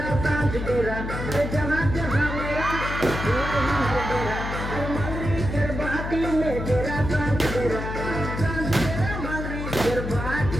सांझ डेरा जहाँ जहाँ मेरा मंगरी करभाटी में डेरा सांझ डेरा मंगरी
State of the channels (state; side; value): noise; left; hum, 5 dB below the sound